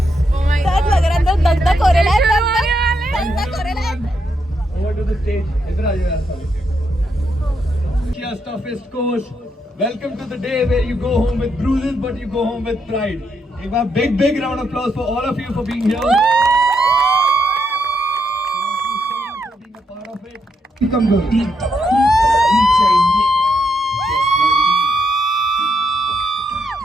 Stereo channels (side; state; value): both; normal; correlation 0.79